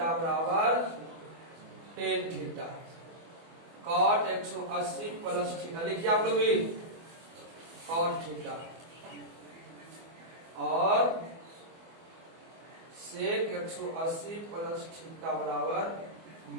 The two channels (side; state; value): left; late; 24 ms